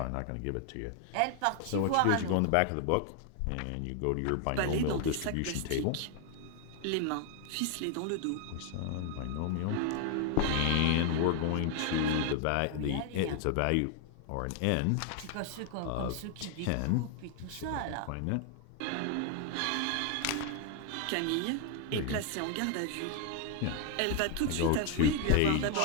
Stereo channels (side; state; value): both; different; correlation 0.00